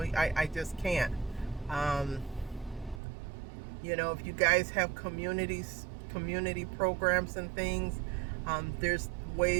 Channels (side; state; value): left; drops out; at 3.0 s